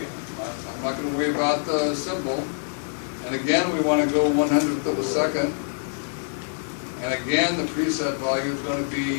I'm not going to worry about the symbol. And again, we want to go 100th of a second. And again, the preset value is going to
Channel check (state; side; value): silent; right; digital silence